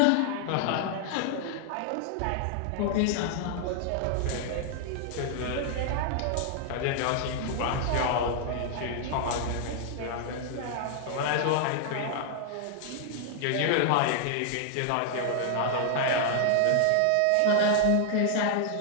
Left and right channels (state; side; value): different; both; correlation 0.00